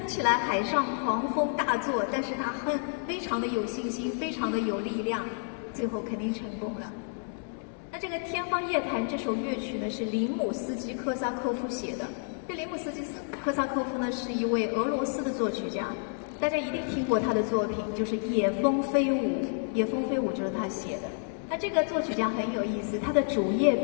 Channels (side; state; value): right; silent; 58 dB below the other